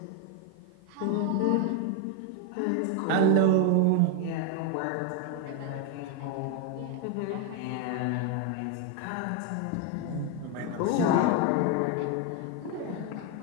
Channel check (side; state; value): both; different; correlation 0.01